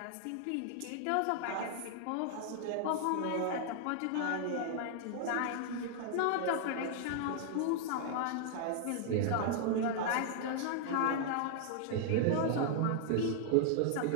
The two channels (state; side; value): different; both; correlation -0.01